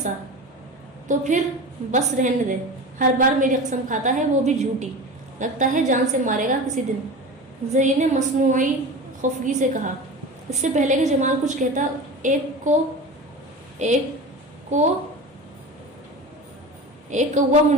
تو پھر بس رہنے دے، ہر بار میری قسم کھاتا ہے، وہ بھی جھوٹی، لگتا ہے جان سے مارے گا کسی دن۔ زری نے مصنوعی خفگی سے کہا۔ اس سے پہلے کہ جمال کچھ کہتا، ایک کوا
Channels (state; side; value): normal; both; correlation 0.31